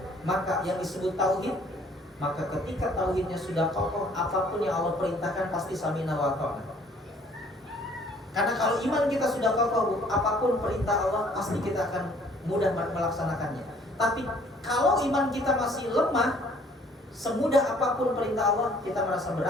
maka yang disebut tauhid. Maka ketika tauhidnya sudah kokoh, apapun yang Allah perintahkan pasti samina wa ta'na. Karena kalau iman kita sudah kokoh, apapun perintah Allah pasti kita akan mudah melaksanakannya. Tapi kalau iman kita masih lemah, semudah apapun perintah Allah kita merasa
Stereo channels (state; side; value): normal; both; correlation 0.58